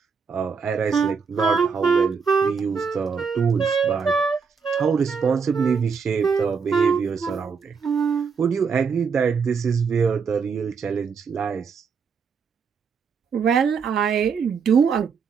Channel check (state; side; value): quieter; left; 5.8 dB